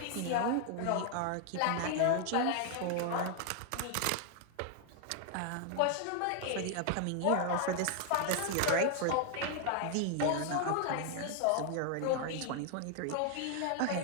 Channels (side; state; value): both; different; correlation 0.00